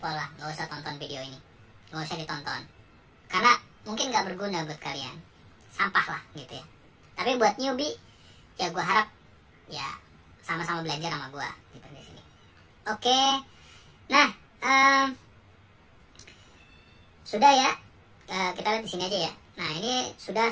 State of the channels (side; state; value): both; identical; correlation 1.00